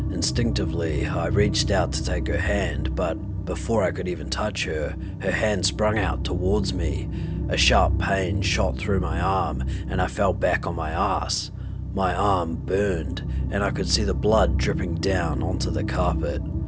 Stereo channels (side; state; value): both; identical; correlation 1.00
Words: Instinctively, I reached out to take her hand, but before I could even touch her, her hand sprung out towards me. A sharp pain shot through my arm and I fell back on my ass. My arm burned, and I could see the blood dripping down onto the carpet.